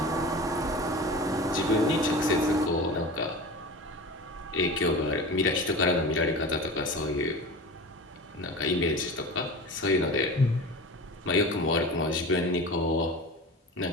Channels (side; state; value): both; normal; correlation 0.33